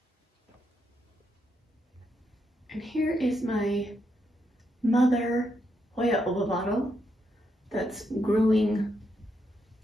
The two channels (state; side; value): normal; both; correlation 0.80